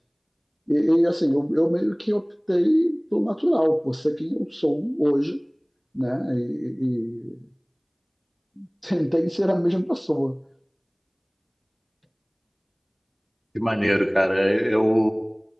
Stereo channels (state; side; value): identical; both; correlation 1.00